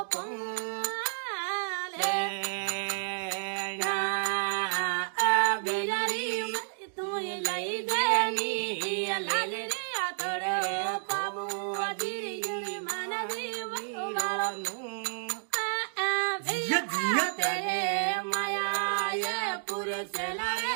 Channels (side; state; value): left; silent; digital silence